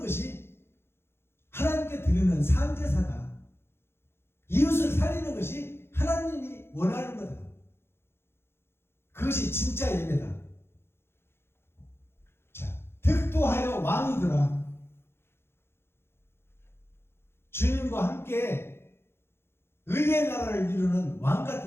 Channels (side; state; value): right; late; 0.12 ms